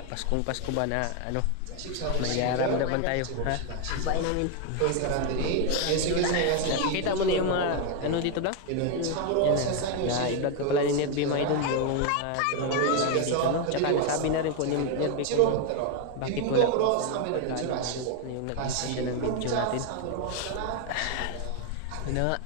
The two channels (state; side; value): different; both; correlation 0.01